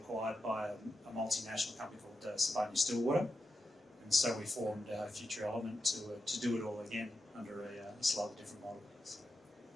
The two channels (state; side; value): normal; both; correlation 0.88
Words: by a multinational company called Stillwater, and so we formed Future Element to do it all again under a slightly different model. So.